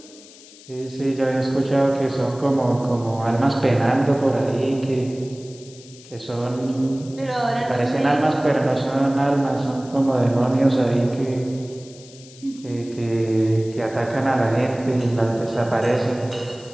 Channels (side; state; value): left; noise; hiss, 21 dB below the sound